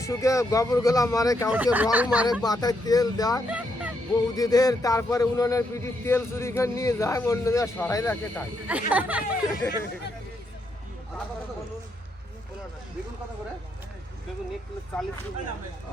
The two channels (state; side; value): normal; both; correlation 0.78